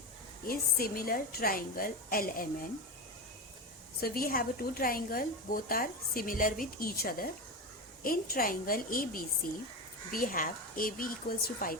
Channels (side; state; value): both; normal; correlation 0.19